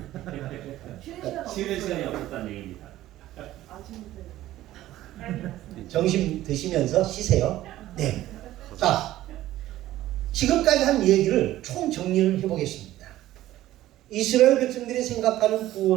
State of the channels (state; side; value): quieter; left; 14.7 dB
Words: 쉬는 시간이 없었다는 얘기입니다. 점심 드시면서 쉬세요. 네. 자, 지금까지 한 얘기를 총 정리를 해보겠습니다. 이스라엘 백성들이 생각하는